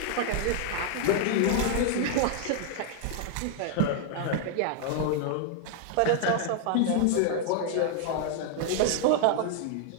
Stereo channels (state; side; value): different; both; correlation 0.00